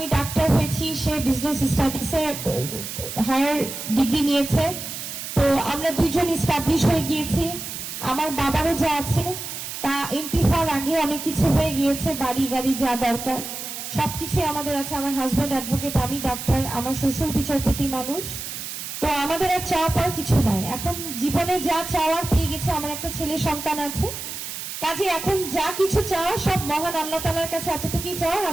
ডাক্তার হয়েছি, সে বিজনেস স্টাডিজে হায়ার ডিগ্রি নিয়েছে। তো আমরা দুইজন এস্টাবলিশ হয়ে গিয়েছি। আমার বাবারও যা আছে তা এমপি হওয়ার আগে অনেক কিছু হয়ে গিয়েছে, বাড়ি গাড়ি যা দরকার সবকিছু আমাদের আছে। আমার হাজবেন্ড অ্যাডভোকেট, আমি ডাক্তার, আমার শ্বশুর বিচারপতি মানুষ। তো আমাদের আর চাওয়া পাওয়ার কিছু নাই, এখন জীবনে যা চাওয়ার পেয়ে গেছে। আমার একটা ছেলে সন্তান আছে, কাজে এখন যা কিছু চাওয়া সব মহান আল্লাহ তাআলার কাছে এতটুকুই চাওয়ার,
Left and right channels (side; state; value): right; noise; hiss, 7 dB below the sound